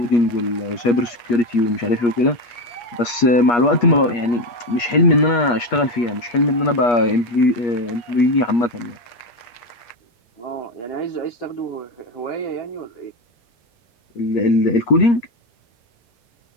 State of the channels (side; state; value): right; late; 8.4 ms